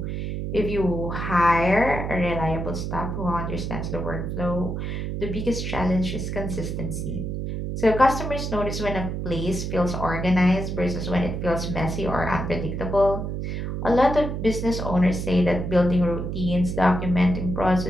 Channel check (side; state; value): right; noise; hum, 3 dB below the sound